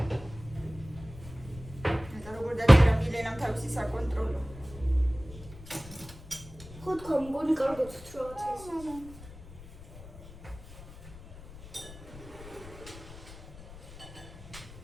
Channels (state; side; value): noise; left; rumble, 16 dB below the sound